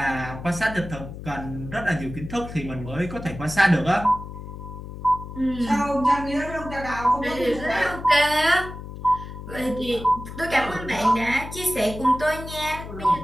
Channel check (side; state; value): left; noise; hum, 11 dB below the sound